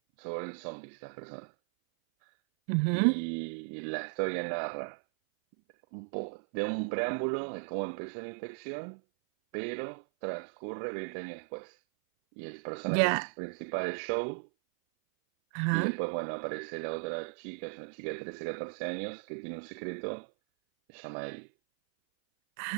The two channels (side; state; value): left; silent; 54 dB below the other